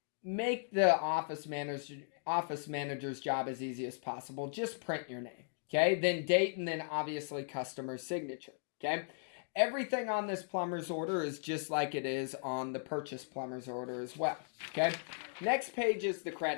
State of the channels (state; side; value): silent; right; digital silence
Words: make the office manager's job as easy as possible. Just print your name. Okay, then date, and then obviously customer signature. Okay, everything on this plumber's order is just like it is on the purchase plumber's order as well. Okay, next page is the